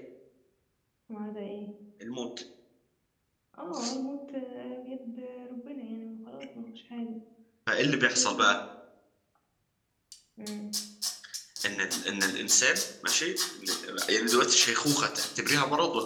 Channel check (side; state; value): both; identical; correlation 1.00